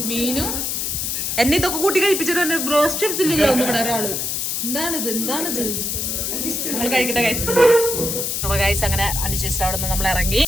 മീനും എന്നെ ഇതൊക്കെ കൂട്ടി കഴിപ്പിച്ചിട്ട് ബ്രോസ്റ്റ് എടുത്തില്ലല്ലോ ഒന്നും ഇവിടെ ഒരാള്. എന്താണിത് നമ്മൾ കഴിക്കട്ടെ ഗൈസ്. അപ്പൊ ഗൈസ് അങ്ങനെ അനുശേഷിച്ചിട്ട് അവിടെ നിന്ന് നമ്മൾ ഇറങ്ങി.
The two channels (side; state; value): left; noise; hiss, 1 dB below the sound